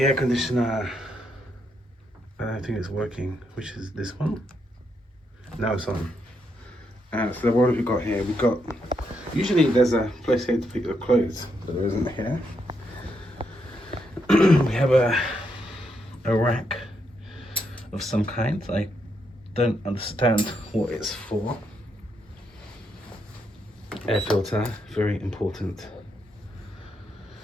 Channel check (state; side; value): normal; both; correlation 0.79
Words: air conditioner. I don't think it's working. Which is this one? Now it's on. So what have we got here? We've got, usually there's a place here to pick your clothes, but there isn't here. We have a rack of some kind. I don't understand what it's for. Air filter, very important.